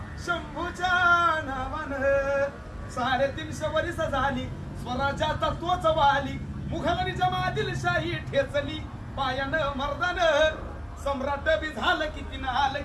शंभूच्या नावानं 350 वर्ष झाली स्वराज्याचा तोच वाली मुघलांनी जमातील शाही ठेचली पायानं मर्दानं सम्राट बी झालं किती नाल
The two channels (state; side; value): identical; both; correlation 1.00